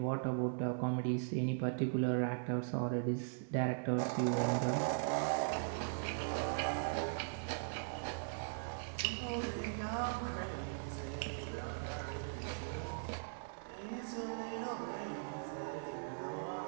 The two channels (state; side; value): silent; left; digital silence